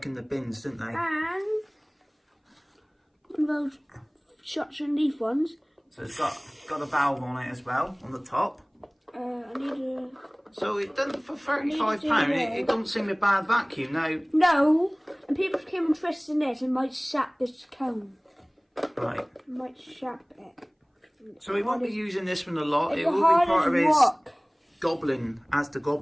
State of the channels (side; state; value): both; identical; correlation 1.00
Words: in the bins, didn't they? And one of those shots and leaf ones. So it's got a valve on it as well, on the top. I need a... So it doesn't, for £35, it doesn't seem a bad vacuum. Now, No, and people came and twisted this and might sap this cone. right. Might sap it. So he won't be using this one a lot. It's It will hard be part as of his rock. Goblin, ASDA